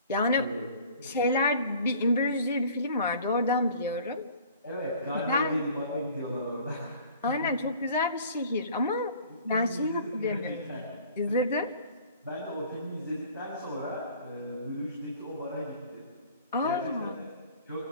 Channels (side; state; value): both; inverted; correlation -0.49